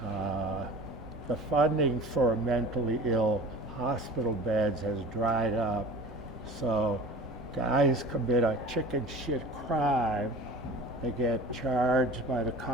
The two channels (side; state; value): both; normal; correlation 0.40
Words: The funding for mentally ill hospital beds has dried up, so guys commit a chicken shit crime, they get charged by the